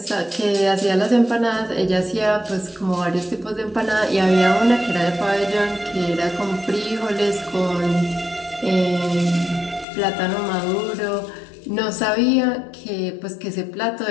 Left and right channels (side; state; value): right; drops out; at 9.9 s